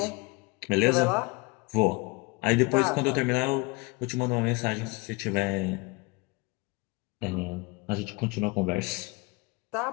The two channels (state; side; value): quieter; right; 25.6 dB